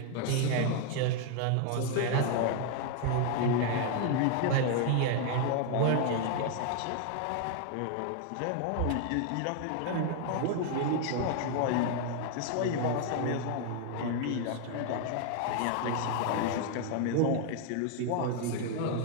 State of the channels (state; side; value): different; both; correlation 0.00